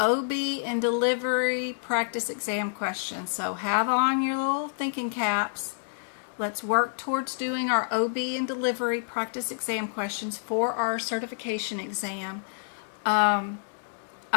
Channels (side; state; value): right; silent; digital silence